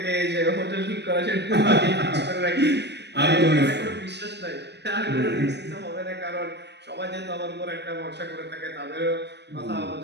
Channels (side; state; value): left; late; 0.50 ms